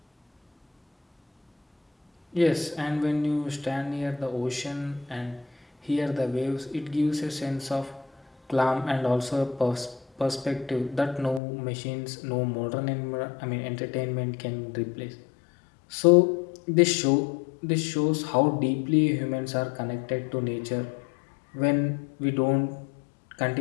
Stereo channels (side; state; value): right; drops out; at 11.4 s